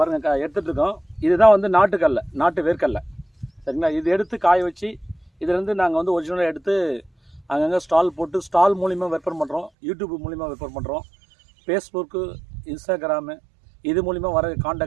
எடுத்துகிட்டு இருக்கோம். இதுதான் வந்து நாட்டு வேர்க்கடலை, சரிங்களா? இது எடுத்து காய வச்சு இதுலேருந்து நாங்கள் வந்து ஒரிஜினலாக எடுத்து அங்கங்கே ஸ்டால் போட்டு ஸ்டால் மூலிமா விற்பனை பண்ணுறோம். யூடியூப் மூலிமா விற்பனை பண்ணுறோம். ஃபேஸ்புக்கு, இன்ஸ்டாகிராமு இது மூலிமா வர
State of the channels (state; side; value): drops out; left; at 9.7 s